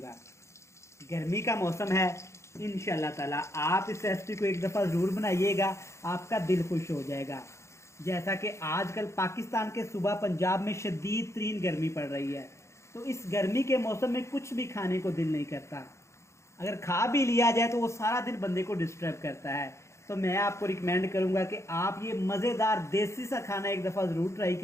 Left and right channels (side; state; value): right; late; 0.14 ms